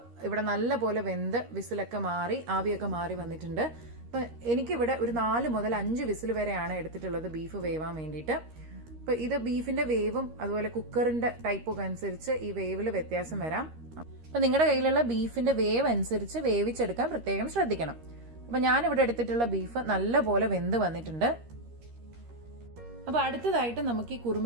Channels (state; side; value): late; left; 13 ms